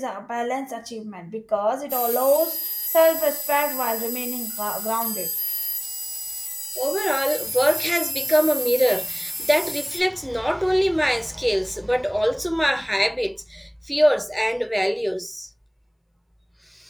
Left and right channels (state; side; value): identical; both; correlation 1.00